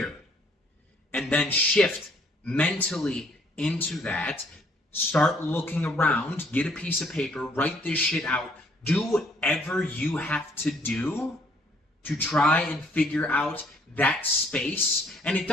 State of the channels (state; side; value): normal; both; correlation 0.63